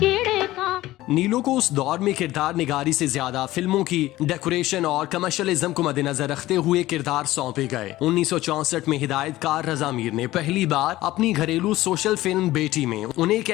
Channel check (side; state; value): right; quieter; 16.5 dB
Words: नीलो को उस दौर में किरदार निगारी से ज्यादा फिल्मों की डेकोरेशन और कमर्शियलिज्म को मद्देनजर रखते हुए किरदार सौंपे गए। 1964 में हिदायतकार रजा मीर ने पहली बार अपनी घरेलू सोशल फिल्म बेटी में उन्हें एक